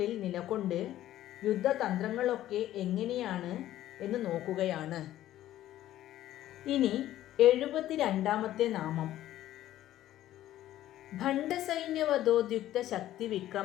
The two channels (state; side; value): quieter; right; 13.5 dB